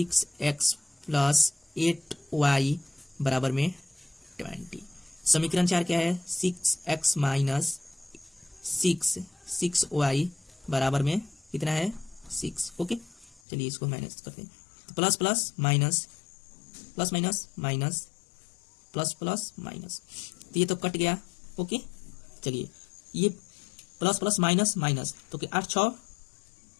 + 8y बराबर में 20। समीकरण 4 क्या है, 6x माइनस 6y बराबर में कितना है, 6। ओके, चलिए इसको माइनस करते हैं। तो plus plus minus, plus minus minus, plus plus minus, तो ये तो कट गया। ओके, चलिए ये प्लस प्लस माइनस माइनस, तो 8 6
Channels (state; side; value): drops out; right; at 13.4 s